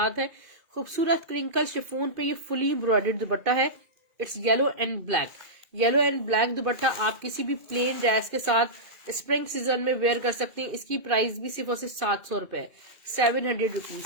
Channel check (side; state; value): left; late; 2.4 ms